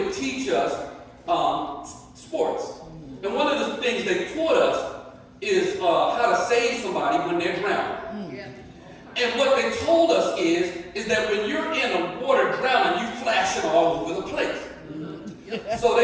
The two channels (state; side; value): identical; both; correlation 1.00